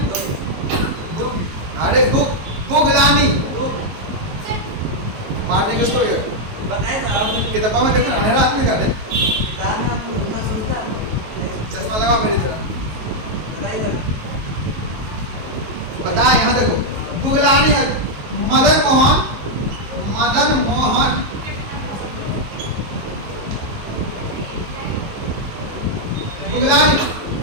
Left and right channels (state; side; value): late; left; 19 ms